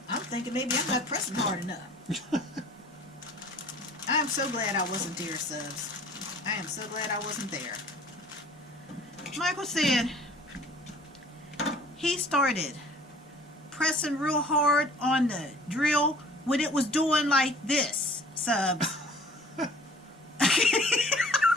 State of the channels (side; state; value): both; normal; correlation 0.51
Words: thinking maybe I'm not pressing hard enough. I'm so glad I wasn't there, Subs. I am so glad I wasn't there. Michael said he started pressing real hard on the drill when it was doing like this, Subs.